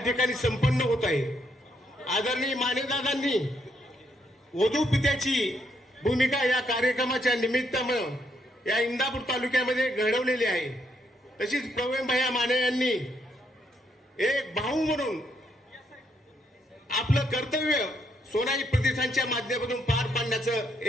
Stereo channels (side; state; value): both; normal; correlation 0.75